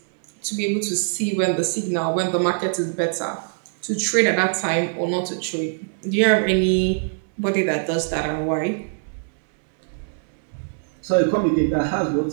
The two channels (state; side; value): silent; left; 64 dB below the other